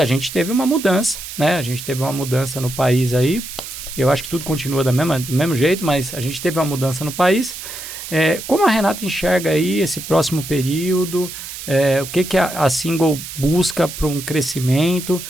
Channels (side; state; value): right; noise; hiss, 10 dB below the sound